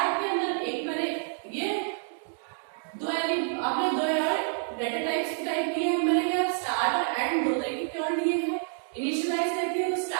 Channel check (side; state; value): left; silent; 59 dB below the other